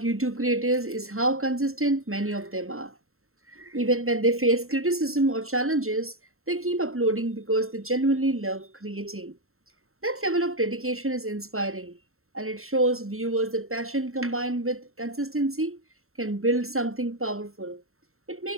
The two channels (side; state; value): left; late; 0.62 ms